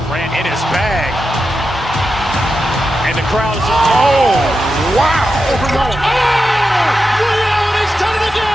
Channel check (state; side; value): normal; both; correlation 0.89